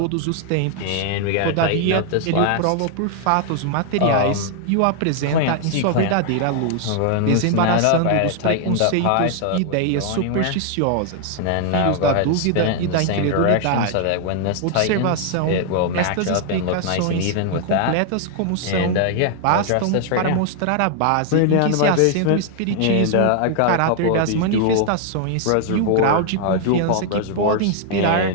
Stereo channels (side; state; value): both; different; correlation 0.00